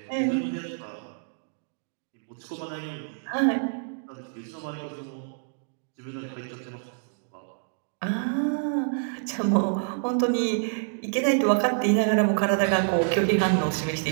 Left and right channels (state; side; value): silent; left; digital silence